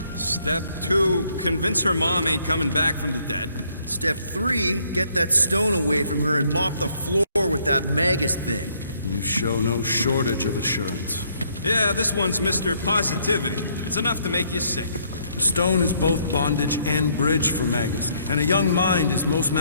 Step 2, convince her mom ain't coming back from the dead. Step 3, get that stone away from her and mop the floor with that Magus thing. You show no shortage of assurance. Yeah, this one's Mr. Positivity. It's enough to make you sick. The stone is both bondage and bridge for Magus, and a young mind is most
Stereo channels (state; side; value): inverted; both; correlation -0.68